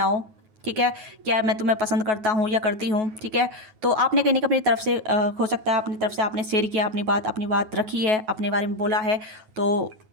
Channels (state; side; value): late; left; 9.3 ms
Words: ठीक है, क्या मैं तुम्हें पसंद करता हूँ या करती हूँ, ठीक है। तो आपने कहने का अपनी तरफ से हो सकता है अपनी तरफ से आपने शेयर किया, अपनी बात रखी है, अपने बारे में बोला है। तो